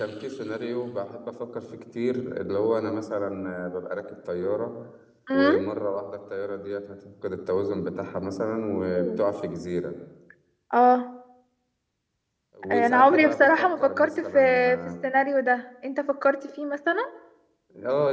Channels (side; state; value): both; identical; correlation 1.00